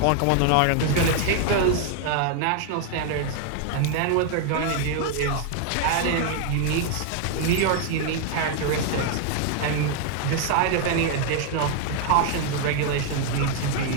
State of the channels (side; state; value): both; different; correlation 0.00